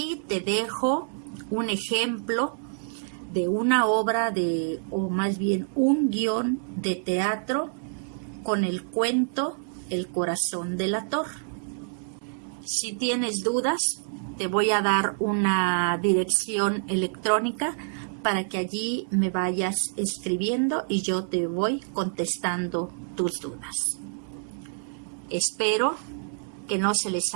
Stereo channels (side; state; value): left; silent; 60 dB below the other